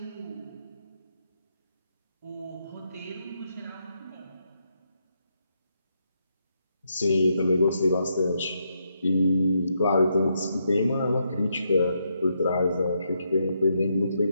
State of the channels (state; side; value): inverted; both; correlation -0.79